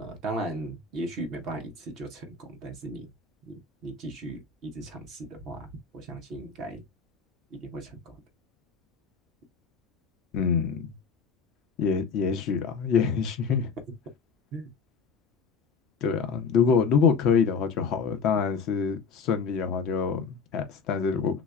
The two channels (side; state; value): right; quieter; 5.3 dB